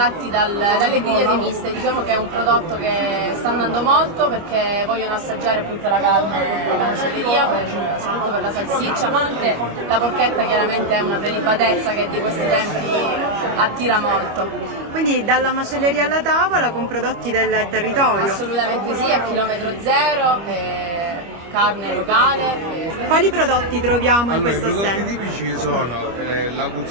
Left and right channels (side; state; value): left; late; 25 ms